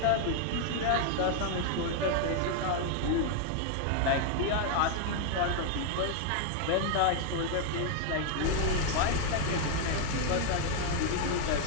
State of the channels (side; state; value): both; different; correlation 0.00